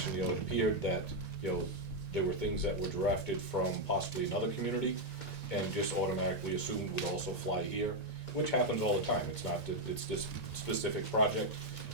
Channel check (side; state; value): right; late; 1.9 ms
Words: it appeared that, there were things that were drafted from possibly another community and just automatically assumed would also fly here, which happens all the time, it's not that it's this specific project.